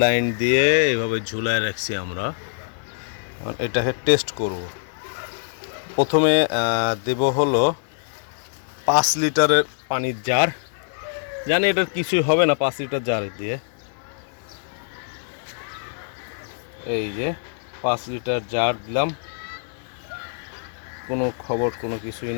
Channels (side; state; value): right; silent; 63 dB below the other